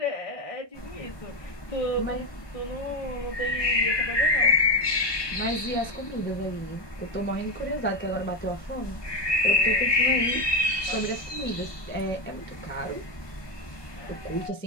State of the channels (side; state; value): right; late; 1.2 ms